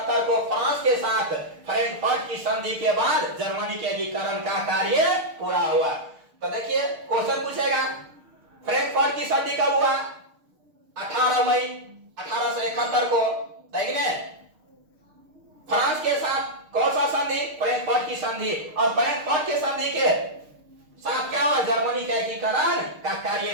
को फ्रांस के साथ फ्रैंकफर्ट की संधि के बाद जर्मनी के एकीकरण का कार्य पूरा हुआ। तो देखिए क्वेश्चन पूछेगा, फ्रैंकफर्ट की संधि कब हुआ? 18 मई 1871 को। फ्रांस के साथ कौन सा संधि? फ्रैंकफर्ट की संधि। और फ्रैंकफर्ट की संधि के साथ क्या हुआ? जर्मनी का एकीकरण का कार्य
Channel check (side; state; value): left; late; 6.5 ms